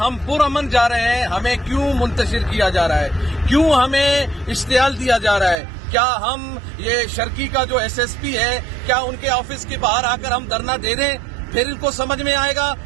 پرامن جا رہے ہیں. ہمیں کیوں منتشر کیا جا رہا ہے؟ کیوں ہمیں اشتعال دیا جا رہا ہے؟ کیا ہم یہ شرکی کا جو ایس ایس پی ہے، کیا ان کے آفس کے باہر آ کر ہم دھرنا دے دیں؟ پھر ان کو سمجھ میں آئے گا.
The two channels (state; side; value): drops out; left; at 5.6 s